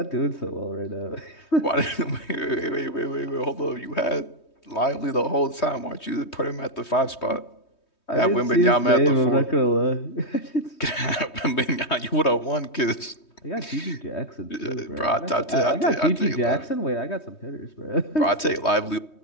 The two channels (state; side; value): late; right; 3.2 ms